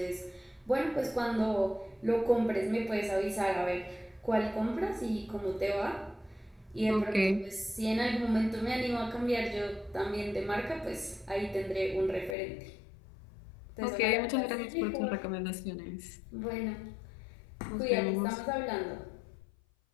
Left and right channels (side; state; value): right; drops out; at 12.4 s